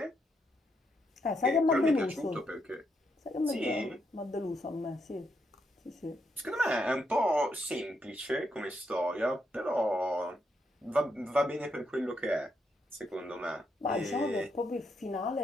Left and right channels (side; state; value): both; normal; correlation 0.79